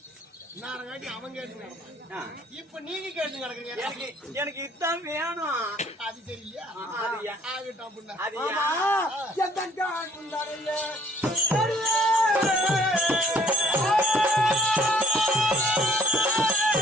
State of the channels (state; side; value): normal; both; correlation 0.58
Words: இப்ப நீங்க கேட்டு நடக்குங்க. எனக்கு இதான் வேணும். அது தெரியல. ஆகட்டும்.